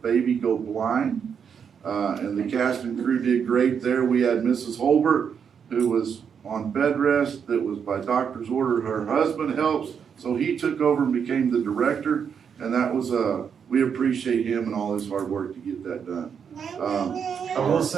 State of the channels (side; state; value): left; quieter; 7.1 dB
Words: Go Blind. And the cast and crew did great there. We had Mrs. Holbert, who was on bed rest, that was by doctor's order. Her husband helps, so he took over and became the director, and that was, we appreciate him and all his hard work to get that done. I will